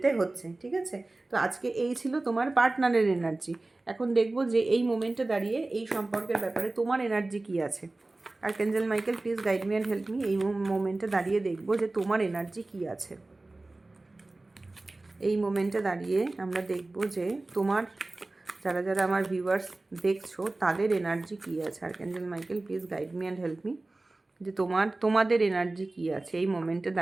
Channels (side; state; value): left; quieter; 3.0 dB